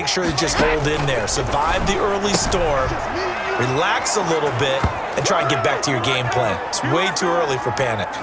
sure to just hold in there. Survive the early storm, relax a little bit, and try and get back to your game plan. It's way too early for panic.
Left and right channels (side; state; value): both; identical; correlation 1.00